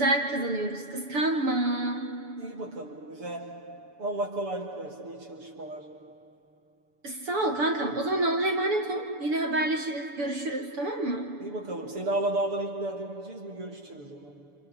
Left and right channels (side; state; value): left; late; 6.9 ms